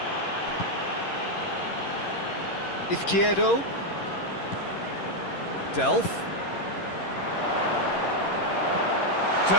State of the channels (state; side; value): late; right; 11 ms